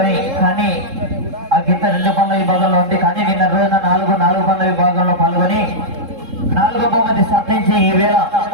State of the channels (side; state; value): left; late; 3.7 ms